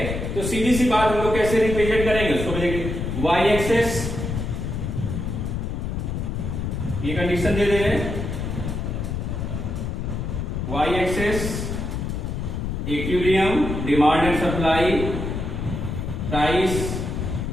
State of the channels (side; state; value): left; noise; rumble, 3 dB below the sound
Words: तो सीधी सी बात हम लोग कैसे रिप्रेजेंट करेंगे उसको भी देखेंगे। वाई एक्सेस, ये कंडीशन दे रहे हैं, Y axis equilibrium, demand and supply, price